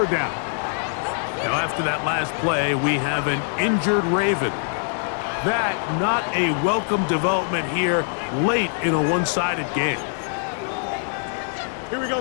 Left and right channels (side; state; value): right; silent; 63 dB below the other